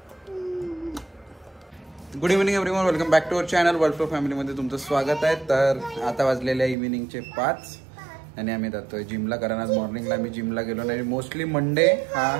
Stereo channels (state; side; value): drops out; left; at 6.8 s